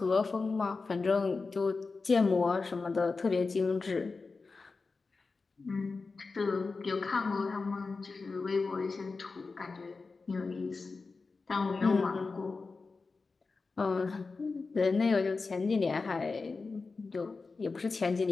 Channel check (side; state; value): right; quieter; 4.2 dB